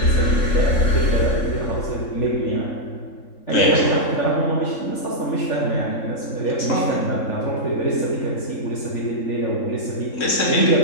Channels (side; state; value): right; late; 3.7 ms